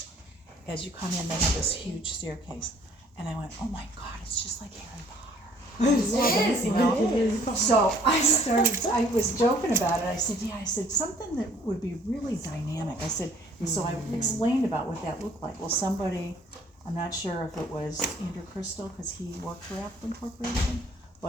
As you come in, they have this huge staircase. And I went, oh my God, it's just like Harry Potter. It is, you know? So I was joking about it. I said, yeah, I said, something that would be really dynamic. I said, and so I explained about what that looked like. Well, somebody, I'm not sure if it was Andrew Crystal, because he worked for Appleton Corporation,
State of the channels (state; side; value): normal; both; correlation 0.58